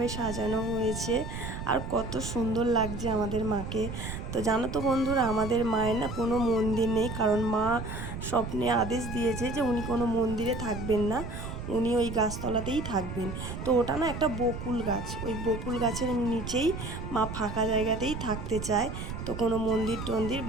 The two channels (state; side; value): noise; right; rumble, 7 dB below the sound